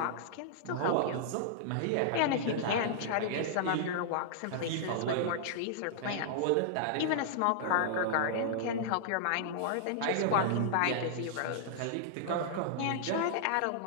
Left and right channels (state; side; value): different; both; correlation -0.01